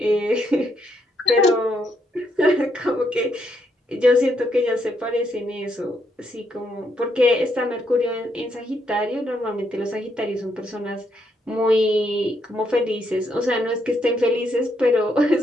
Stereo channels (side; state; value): both; normal; correlation 0.76